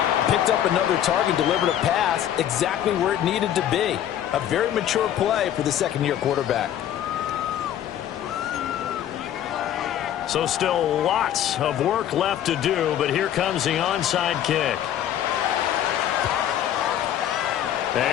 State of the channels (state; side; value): quieter; right; 10.9 dB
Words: picked up another target, delivered a pass exactly where it needed to be. A very mature play for the second-year quarterback. So still lots of work left to do, but here comes the onside kick.